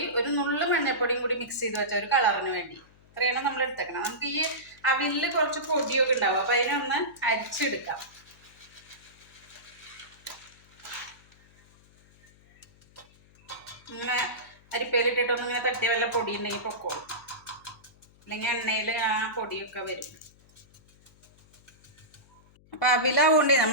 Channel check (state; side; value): noise; left; hum, 28 dB below the sound